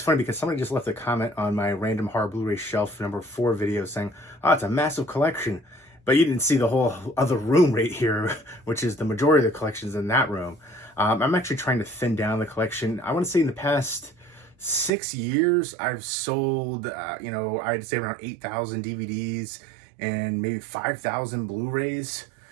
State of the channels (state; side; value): drops out; left; at 14.9 s